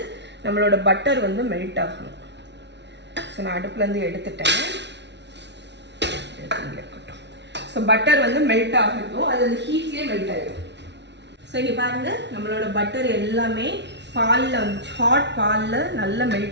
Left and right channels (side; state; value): left; late; 0.51 ms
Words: நம்மளோட பட்டர் வந்து மெல்ட் ஆகணும். ஸோ நான் அடுப்புலேருந்து எடுத்துட்டேன். இருக்கட்டும். ஸோ பட்டர் வந்து மெல்ட் ஆகட்டும். அது அந்த ஹீட்லேயே மெல்ட் ஆகிடும். ஸோ இங்கே பாருங்கள் நம்மளோட பட்டர் எல்லாமே பாலில் வந்து ஹாட் பாலில் நல்லா